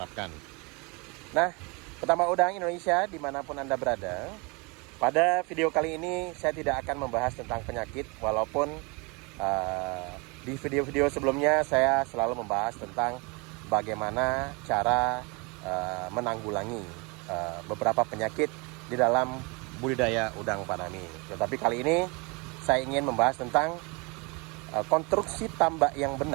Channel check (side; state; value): left; quieter; 29.0 dB